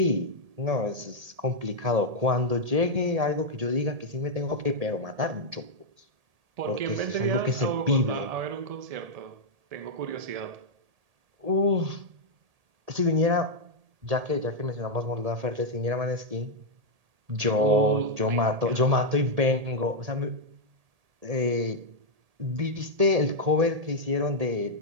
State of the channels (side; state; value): left; late; 1.8 ms